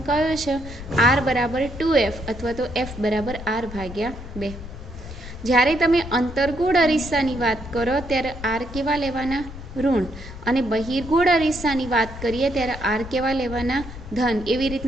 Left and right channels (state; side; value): noise; left; rumble, 12 dB below the sound